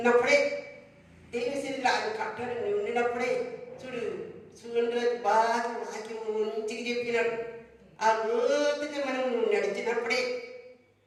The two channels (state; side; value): identical; both; correlation 1.00